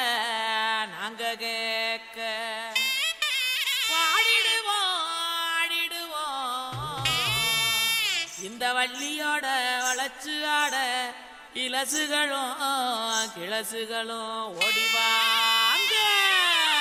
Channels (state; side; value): identical; both; correlation 1.00